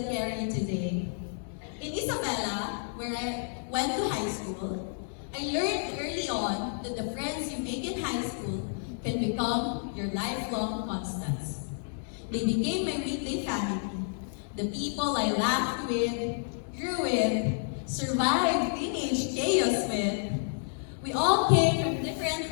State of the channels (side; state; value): right; silent; digital silence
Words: carry today. In Isabela, where I went to high school, I learned early on that the friends you make in high school can become your lifelong constants. They became my weekday family, the people I laughed with, grew with, survived teenage chaos with. We all came from different